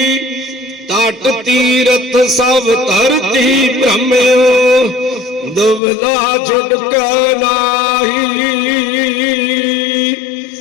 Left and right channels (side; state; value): right; drops out; at 5.8 s